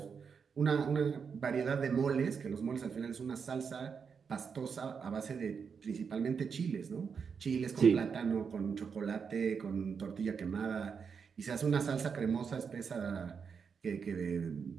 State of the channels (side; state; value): left; quieter; 6.2 dB